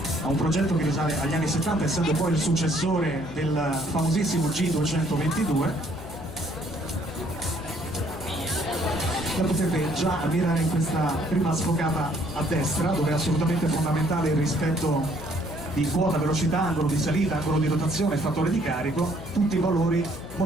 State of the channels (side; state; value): left; noise; hum, 13 dB below the sound